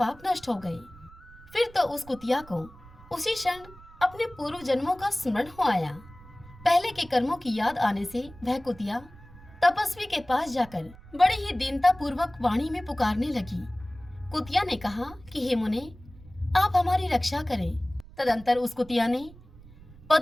नष्ट हो गए। फिर तो उस कुतिया को उसी क्षण अपने पूर्व जन्मों का स्मरण हो आया। पहले के कर्मों की याद आने से वह कुतिया तपस्वी के पास जाकर बड़ी ही दीनता पूर्वक वाणी में पुकारने लगी। कुतिया ने कहा कि हे मुने, आप हमारी रक्षा करें। तदंतर उस कुतिया ने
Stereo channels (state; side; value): noise; right; rumble, 21 dB below the sound